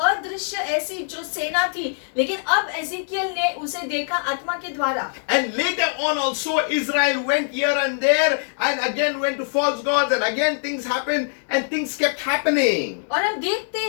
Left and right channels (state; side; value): silent; right; digital silence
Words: ऐसी जो सेना थी, लेकिन अब एजेकियल ने उसे देखा आत्मा के द्वारा। And later on also Israel went here and there and again went to false gods and again things happened and things kept happening. और हम देखते